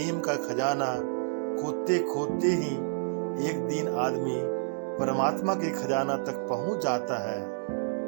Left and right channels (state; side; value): silent; left; digital silence